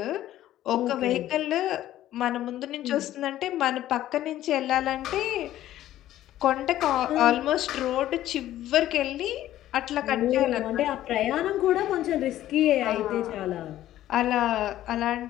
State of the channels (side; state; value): right; quieter; 13.4 dB